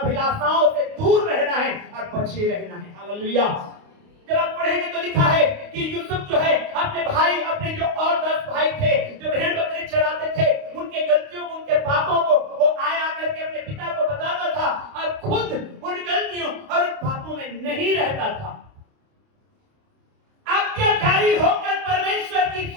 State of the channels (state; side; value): late; left; 29 ms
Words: से दूर रहना है और बचे रहना है। हालेलुया। जब आप पढ़ेंगे तो लिखा है कि यूसुफ जो है अपने भाई, अपने जो और 10 भाई थे जो भेड़ बकरी चराते थे, उनके गलतियों को, उनके पापों को वो आया करके अपने पिता को बताता था और खुद उन गलतियों और उन पापों में नहीं रहता था। आज्ञाकारी होकर परमेश्वर की